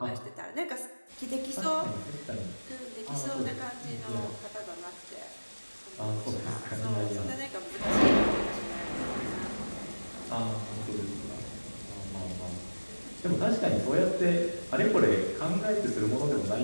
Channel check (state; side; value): inverted; both; correlation -1.00